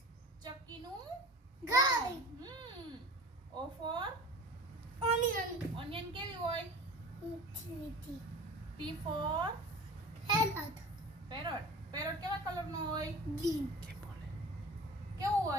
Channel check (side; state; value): both; normal; correlation 0.38